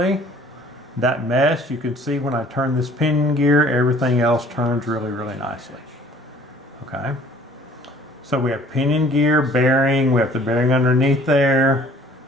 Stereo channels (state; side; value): normal; both; correlation 0.53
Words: That mesh, you can see when I turn this pinion gear, everything else turns really, really nicely. Okay. So we have pinion gear, bearing, we have the bearing underneath there.